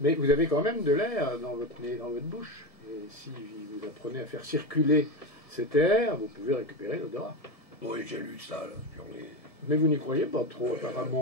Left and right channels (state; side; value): late; right; 1.7 ms